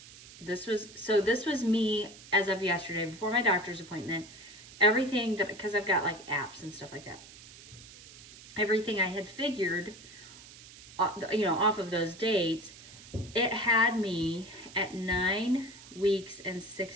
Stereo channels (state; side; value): noise; right; hiss, 18 dB below the sound